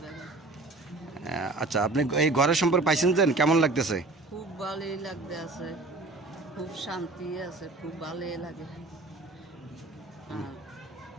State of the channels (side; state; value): left; quieter; 3.2 dB